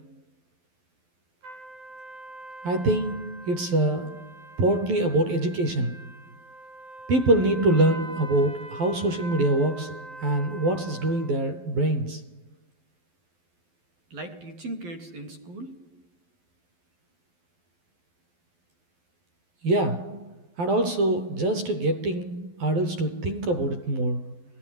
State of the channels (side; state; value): left; late; 12 ms